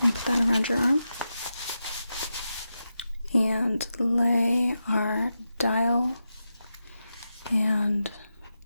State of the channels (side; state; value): both; inverted; correlation -0.89